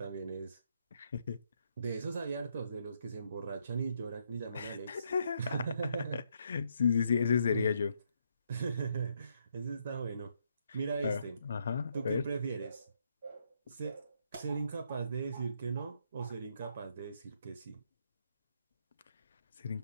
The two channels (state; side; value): inverted; both; correlation -0.75